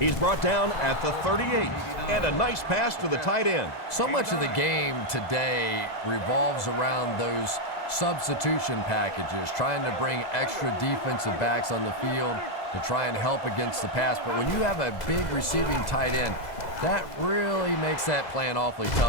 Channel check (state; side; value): late; right; 2.1 ms